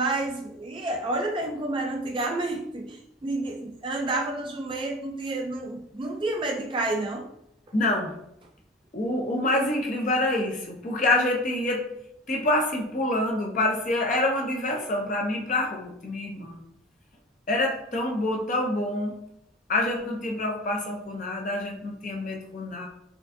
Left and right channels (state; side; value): normal; both; correlation 0.33